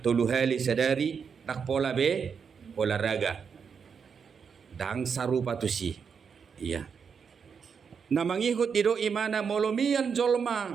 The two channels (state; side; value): quieter; left; 6.4 dB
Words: tolu hali sadari tak pola be olahraga. Dang sarupa tu si. Iya. Namangihut dido imana molomian